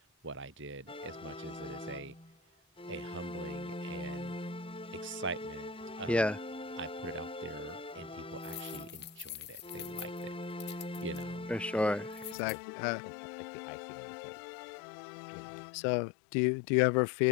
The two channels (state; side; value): drops out; right; at 12.4 s